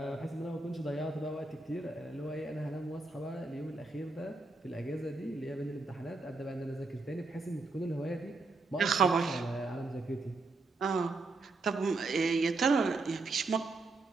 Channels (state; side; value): quieter; left; 3.6 dB